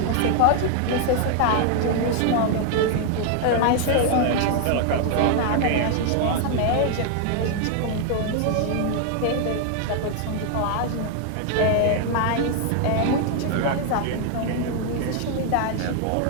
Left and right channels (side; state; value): both; different; correlation 0.00